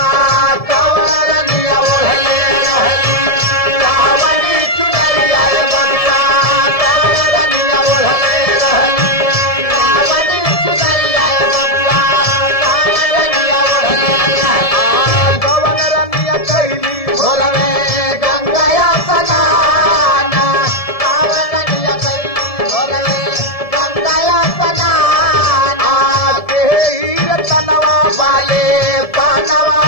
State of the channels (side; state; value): right; late; 1.7 ms